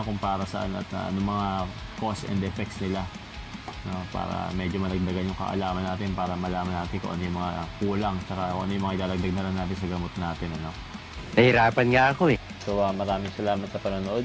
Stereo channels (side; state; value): both; identical; correlation 1.00